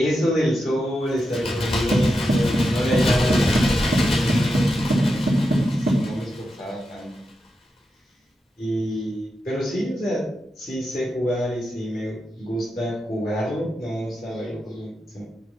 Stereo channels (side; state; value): both; normal; correlation 0.88